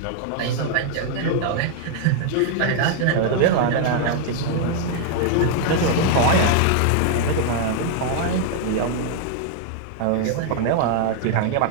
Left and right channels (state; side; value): different; both; correlation -0.01